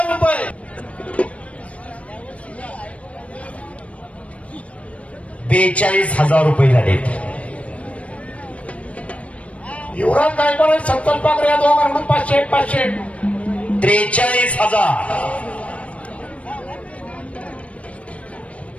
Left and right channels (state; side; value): late; right; 0.064 ms